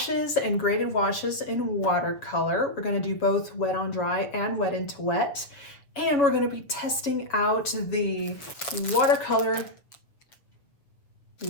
and graded washes in watercolor. We're going to do both wet on dry and wet into wet. And we're going to be testing out the Watercolor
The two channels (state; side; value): late; right; 7.0 ms